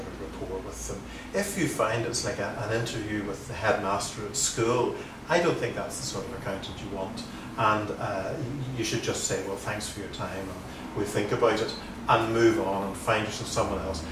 of rapport with them. If you find it's like an interview with the headmaster at school, I don't think that's the sort of accountant you want. And you should just say, well, thanks for your time, and we'll think about it, and move on and find yourself someone else.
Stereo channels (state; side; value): identical; both; correlation 1.00